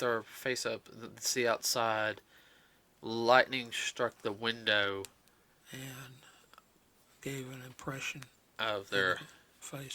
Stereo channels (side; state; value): both; identical; correlation 1.00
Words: face up to see outside, lightning struck the window, And gave an impression of their